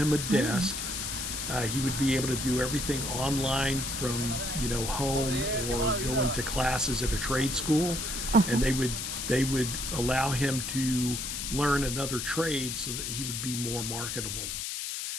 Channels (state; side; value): noise; left; hiss, 4 dB below the sound